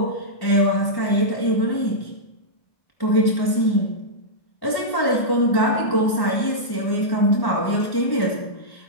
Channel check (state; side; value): late; right; 1.1 ms